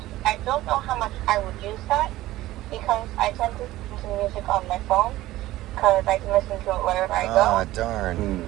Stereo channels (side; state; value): left; quieter; 16.3 dB